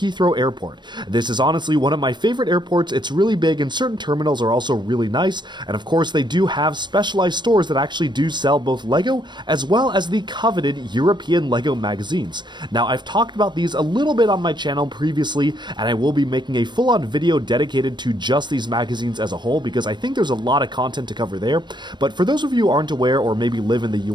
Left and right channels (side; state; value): left; late; 0.22 ms